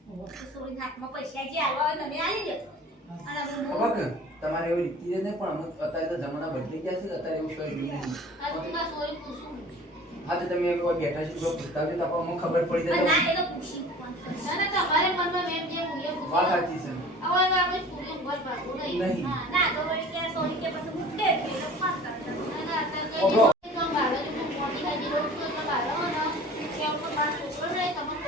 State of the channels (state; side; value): normal; both; correlation 0.44